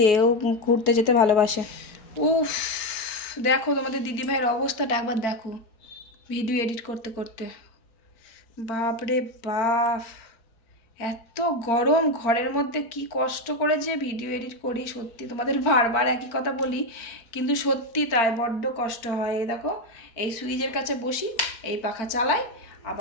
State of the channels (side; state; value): right; late; 4.4 ms